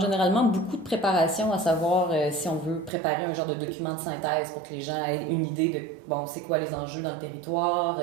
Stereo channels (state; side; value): drops out; left; at 2.9 s